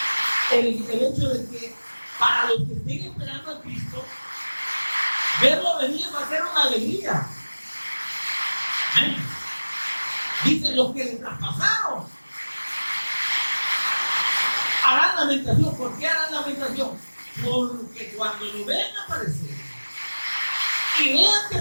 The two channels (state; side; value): inverted; both; correlation -1.00